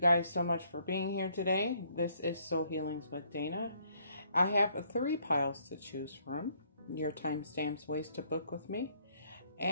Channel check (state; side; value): inverted; both; correlation -0.67